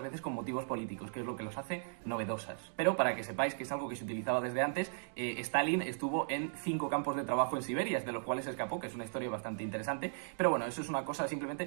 veces con motivos políticos, que es lo que los hace novedosas. Pero para que sepáis que es algo que se utilizaba desde antes, Stalin estuvo en 5 campos de trabajo en Siberia, de los cuales se escapó, que es una historia bastante interesante, pero bueno, eso es una cosa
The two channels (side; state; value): left; silent; digital silence